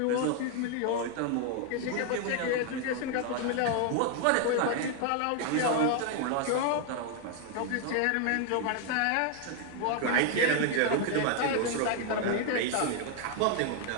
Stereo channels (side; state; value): both; different; correlation 0.00